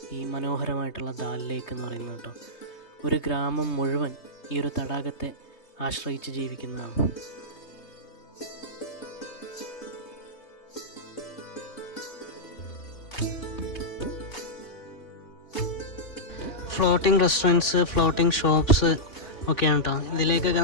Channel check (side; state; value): right; late; 3.2 ms